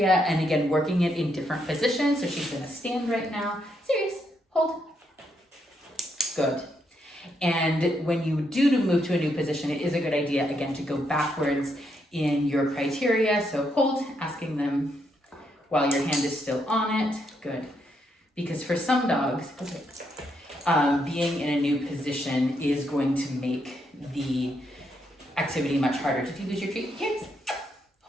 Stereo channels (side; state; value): both; normal; correlation 0.78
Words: And again, working it in different positions. So she's gonna stand right now. Serious, hold. Good. And when you do to move to a new position, it is a good idea, again, to go backwards in your criteria. So hold, asking them while your hand is still on it. Good. Because for some dogs, being in a new position is going to make the activity much harder. Did you lose your treat? Yes.